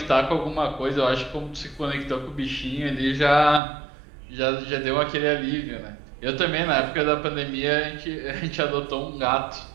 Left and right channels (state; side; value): drops out; left; at 3.6 s